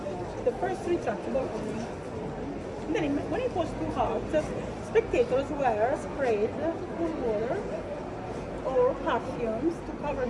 The first retractable. Then when it was too hot, spectators were sprayed with water or perfumes to cover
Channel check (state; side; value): identical; both; correlation 1.00